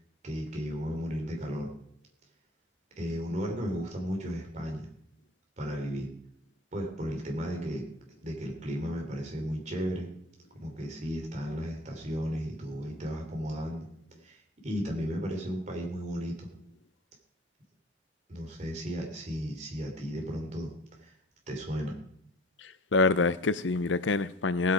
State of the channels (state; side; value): normal; both; correlation 0.46